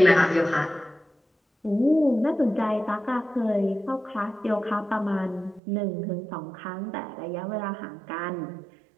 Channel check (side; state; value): left; drops out; at 5.6 s